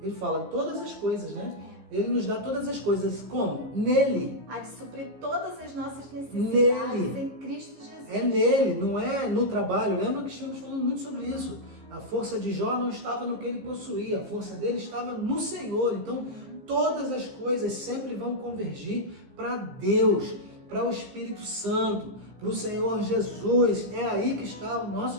ele fala todas as coisas, né? Ele nos dá todas as coisas. Como? Nele. Há de suprir todas as nossas necessidades em Cristo Jesus. É nele, não é no trabalho. Lembra que estamos falando muito sobre isso. A força de Jó não estava no que ele possuía, a força dele estava no Senhor. Então, todas as coisas sempre vão convergir para Deus, para o Espírito Santo, para o Senhor Jesus. É aí que está o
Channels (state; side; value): late; left; 15 ms